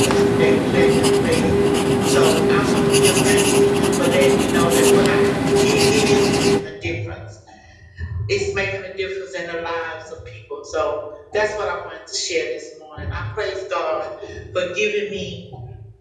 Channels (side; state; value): both; identical; correlation 1.00